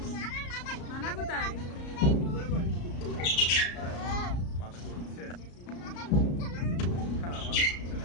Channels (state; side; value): late; right; 34 ms